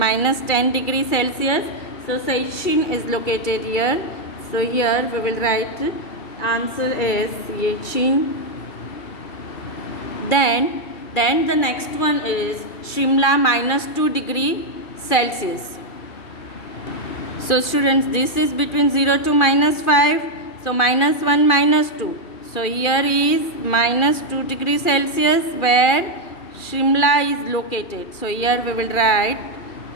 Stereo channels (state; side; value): late; right; 2.4 ms